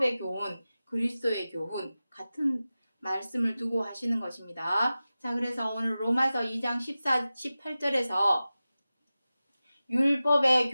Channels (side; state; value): both; inverted; correlation -0.95